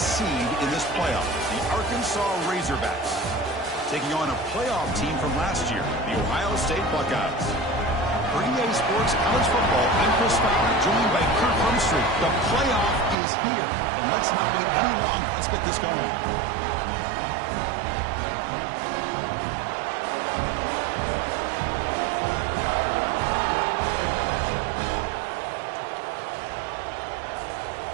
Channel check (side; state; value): left; drops out; at 13.2 s